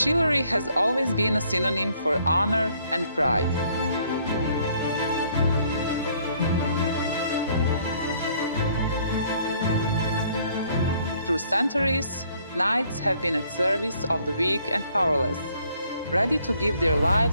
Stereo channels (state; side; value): inverted; both; correlation -0.64